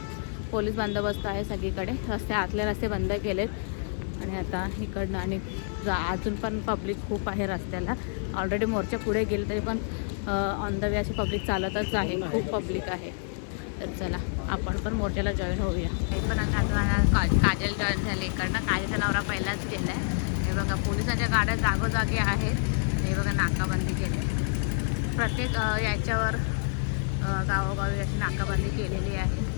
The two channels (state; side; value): silent; right; 57 dB below the other